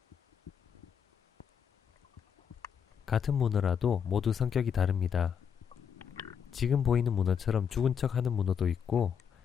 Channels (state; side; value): quieter; right; 7.5 dB